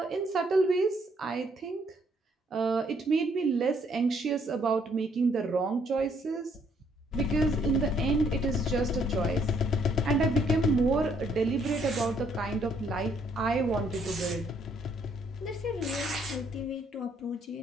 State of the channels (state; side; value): normal; both; correlation 0.68